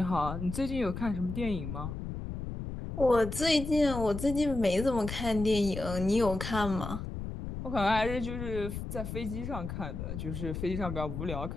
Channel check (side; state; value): left; noise; rumble, 6 dB below the sound